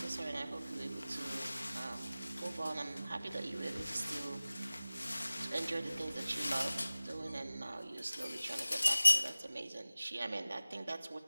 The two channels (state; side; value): inverted; both; correlation -0.98